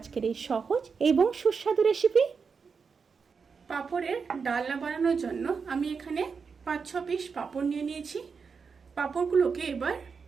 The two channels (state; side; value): quieter; left; 5.5 dB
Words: এই সহজ এবং সুস্বাদু রেসিপি। পাঁপড়ের ডালনা বানানোর জন্য আমি এখানে 5-6 পিস পাঁপড় নিয়ে নিয়েছি। পাঁপড়গুলোকে এবার